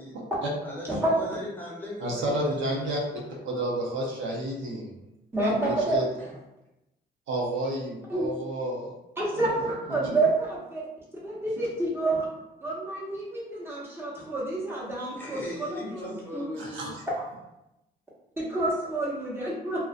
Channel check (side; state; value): both; normal; correlation 0.46